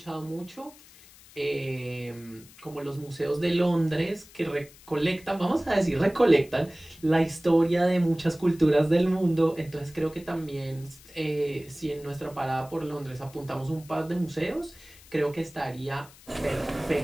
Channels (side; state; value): left; noise; hiss, 23 dB below the sound